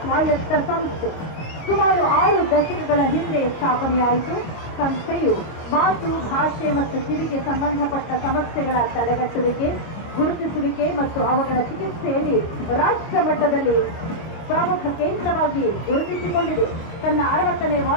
ಸ್ವಾಯತ್ತ ಸಂಸ್ಥೆ. ಸುಮಾರು 6 ದಶಕಗಳ ಹಿಂದೆ ಸ್ಥಾಪನೆಯಾಯಿತು. ಸಂಸ್ಥೆಯು ಮಾತು, ಭಾಷೆ ಮತ್ತು ಕಿವಿಗೆ ಸಂಬಂಧಪಟ್ಟ ಸಮಸ್ಯೆಗಳ ತಡೆಗಟ್ಟುವಿಕೆ, ಗುರುತಿಸುವಿಕೆ ಮತ್ತು ಅವುಗಳ ಚಿಕಿತ್ಸೆಯಲ್ಲಿ ರಾಷ್ಟ್ರ ಮಟ್ಟದಲ್ಲಿ ಪ್ರಮುಖ ಕೇಂದ್ರವಾಗಿ ಗುರುತಿಸಿಕೊಂಡಿದೆ. ತನ್ನ 60ನೇ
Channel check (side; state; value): right; late; 25 ms